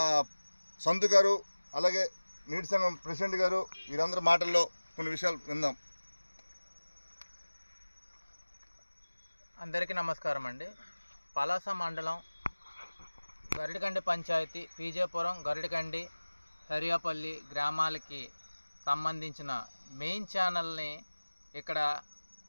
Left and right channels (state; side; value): inverted; both; correlation -1.00